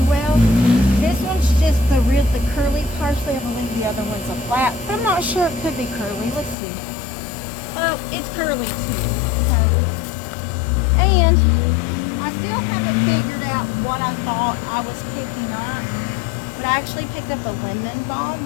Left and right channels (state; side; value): drops out; right; at 6.6 s